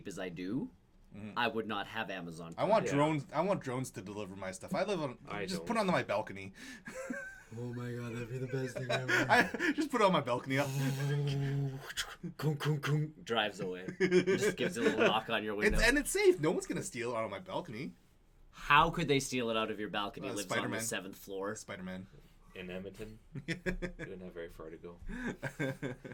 as I do, I would not have Amazon I Prime. want Yeah. drones. I want drones to deliver my stuff. I live on. I just don't. put it on my balcony. Oh my god, that'd be the best thing ever. I just put it on my balcony. Drives away. Just gives a little knock on your window. It's safe. No one's gonna steal it out of my balcony. How could they steal it out of your balcony? It lives on the Spider-Man. 7th floor. Spider-Man. In Edmonton, you don't have very far to go.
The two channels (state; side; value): identical; both; correlation 1.00